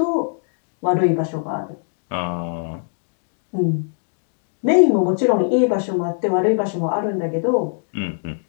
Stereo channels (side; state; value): right; silent; 63 dB below the other